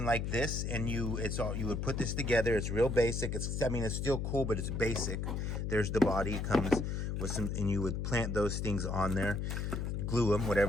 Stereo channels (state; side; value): noise; left; hum, 2 dB below the sound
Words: like this, and you would put this together. It's real basic. It's still cool, but it's basic. There's the body. It comes with some, and you would plant those things on there, glue them,